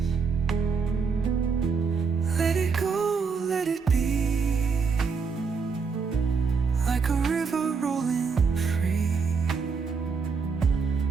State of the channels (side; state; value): left; quieter; 5.3 dB